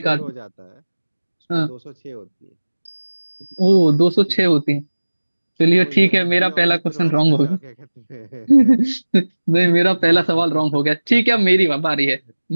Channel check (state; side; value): inverted; both; correlation -1.00